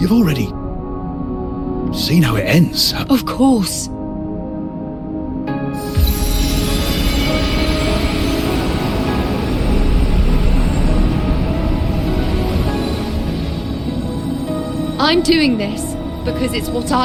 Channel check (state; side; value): identical; both; correlation 1.00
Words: already seen how it ends. Of course. I'm doing this because it's what